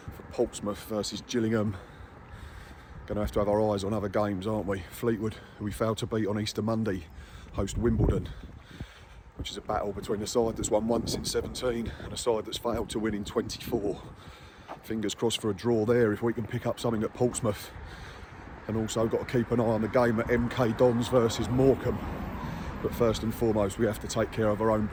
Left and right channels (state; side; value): identical; both; correlation 1.00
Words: for Portsmouth versus Gillingham. Going to have our eyes on other games, aren't we? Fleetwood, who we failed to beat on Easter Monday, host Wimbledon, which is a battle between a side that's won once in 17 and a side that's failed to win in 24. Fingers crossed for a draw there if we can pick up something at Portsmouth. And also got to keep an eye on the game at MK Dons versus Morecambe. But first and foremost, we have to take care of our own